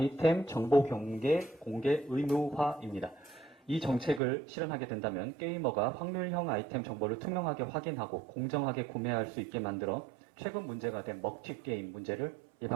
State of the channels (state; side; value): drops out; left; at 4.2 s